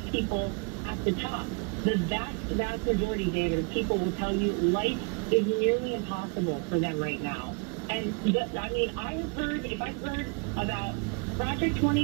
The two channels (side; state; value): left; quieter; 34.0 dB